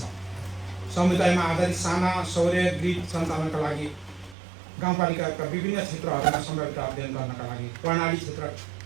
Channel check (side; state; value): left; drops out; at 4.4 s